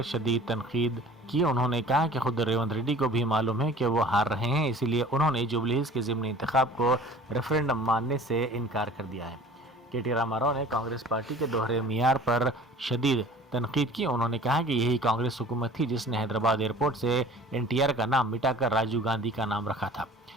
شدید تنقید کی۔ انہوں نے کہا کہ خود ریونت ریڈی کو بھی معلوم ہے کہ وہ ہار رہے ہیں، اسی لیے انہوں نے جوبلی ہلز کے ضمنی انتخاب کو ریفرینڈم ماننے سے انکار کر دیا ہے۔ KT راما راؤ نے کانگریس پارٹی کے دوہرے معیار پر شدید تنقید کی۔ انہوں نے کہا کہ یہی کانگریس حکومت تھی جس نے حیدرآباد ایئرپورٹ سے NTR کا نام مٹا کر راجیو گاندھی کا نام رکھا تھا۔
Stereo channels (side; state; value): both; normal; correlation 0.45